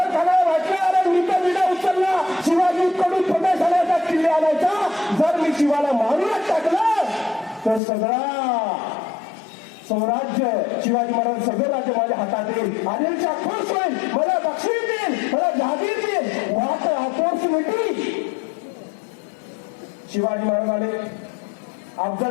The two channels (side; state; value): right; drops out; at 7.8 s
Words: खानाला वाटलं, अरे मी तर विडा उचलला, शिवाजी कडून प्रदेश आणायचा, किल्ले आणायचा, जर मी शिवाला मारूनच टाकलं तर सगळा स्वराज्य, शिवाजी महाराज सगळं राज्य माझ्या हातात येईल, आदिलशाह खुश होईल, मला बक्षीस देईल, मला जहागीर देईल, वाट आपोर्स मिटली. शिवाजी महाराज आले.